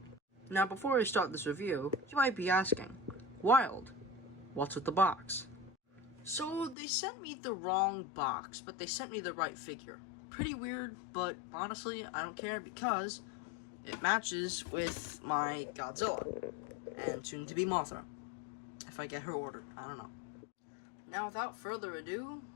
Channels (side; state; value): right; drops out; at 6.8 s